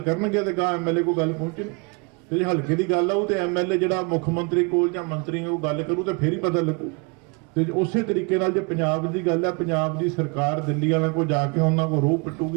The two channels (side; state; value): left; quieter; 31.0 dB